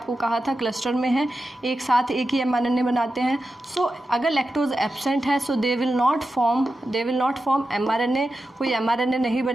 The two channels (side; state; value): both; normal; correlation 0.91